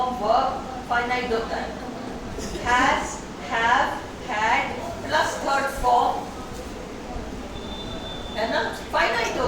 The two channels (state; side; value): identical; both; correlation 1.00